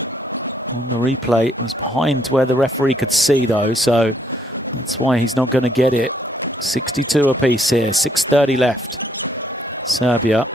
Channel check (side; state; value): both; normal; correlation 0.69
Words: on the replay. It was behind where the referee could see, though, so that's why he's not going to get it. 62 apiece here, 6:30 left. Serbia,